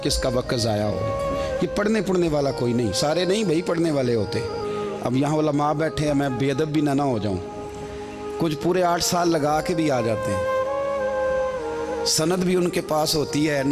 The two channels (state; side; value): identical; both; correlation 1.00